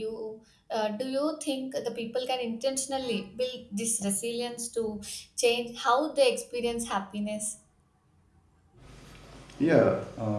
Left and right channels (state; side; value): identical; both; correlation 1.00